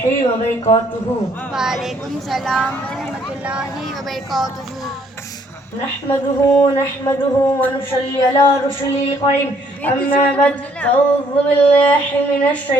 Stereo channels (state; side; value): normal; both; correlation 0.65